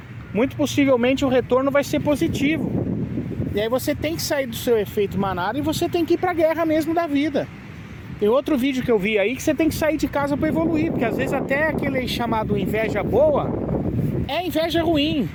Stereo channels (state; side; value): identical; both; correlation 1.00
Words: muito possivelmente o retorno vai ser positivo. E aí você tem que sair do seu efeito manada e você tem que ir pra guerra mesmo da vida. Tem outro vídeo que eu vi aí que você tem que sair de casa para evoluir, porque às vezes até aquele chamado inveja boa é inveja ruim.